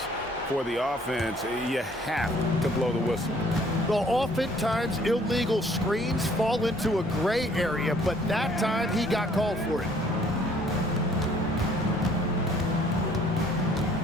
for the offense, you have to blow the whistle. Well, oftentimes illegal screens fall into a gray area, but that time he got called for it.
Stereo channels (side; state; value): both; normal; correlation 0.60